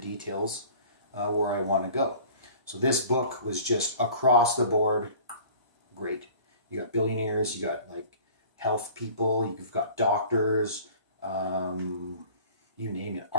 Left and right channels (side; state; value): both; inverted; correlation -0.46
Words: where I want to go. So this book was just across the board great. You got billionaires, you got like health people, you've got doctors, you name it,